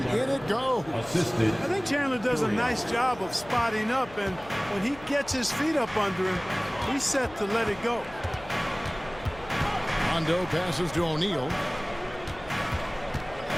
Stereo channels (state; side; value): noise; left; hum, 19 dB below the sound